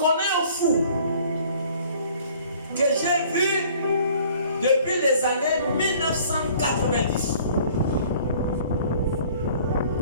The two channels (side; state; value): both; inverted; correlation -0.53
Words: un fou que j'ai vu depuis les années 1990.